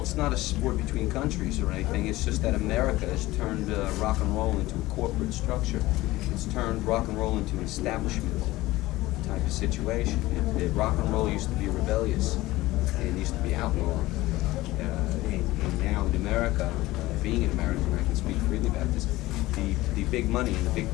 It's not a sport between countries or anything. It's just that America has turned rock and roll into a corporate structure. It's turned rock and roll into an establishment type of situation. Rock and roll used to be rebellious and used to be outlawed. And now in America, being an American, I can speak freely about this, the big money and the big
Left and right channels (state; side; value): quieter; right; 18.2 dB